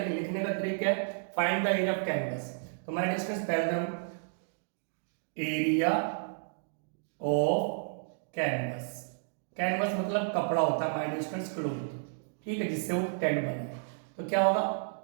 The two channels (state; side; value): silent; left; digital silence